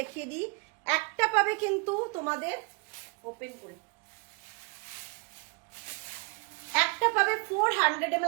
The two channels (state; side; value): quieter; left; 31.0 dB